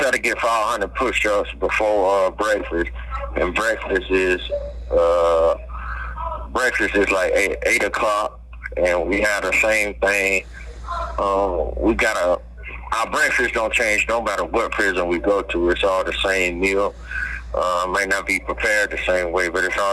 to get 500 push-ups before breakfast, and breakfast is like 8 o'clock. and we had the same thing. We got our breakfast don't change no matter what prison we go to. It's all the same meal. Might not be prepared the same way, but it's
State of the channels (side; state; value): both; identical; correlation 1.00